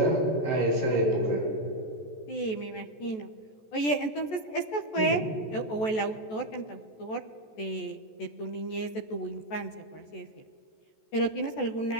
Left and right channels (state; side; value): late; right; 14 ms